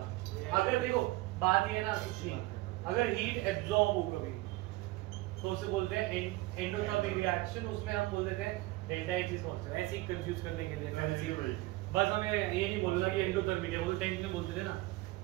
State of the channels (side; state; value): left; quieter; 19.8 dB